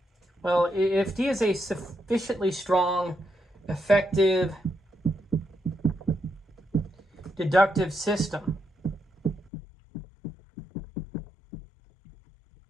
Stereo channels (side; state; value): right; drops out; at 9.5 s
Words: well, if D is a sufficiently strong, effective, deductive system,